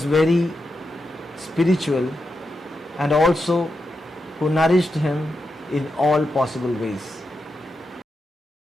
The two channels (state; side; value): normal; both; correlation 0.87